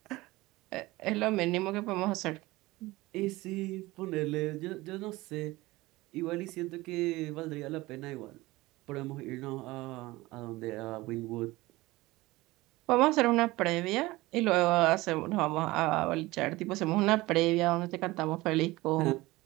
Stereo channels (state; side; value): quieter; left; 19.9 dB